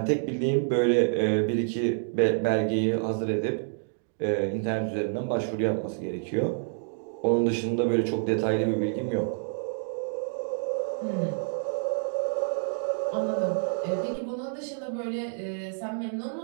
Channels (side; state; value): left; silent; digital silence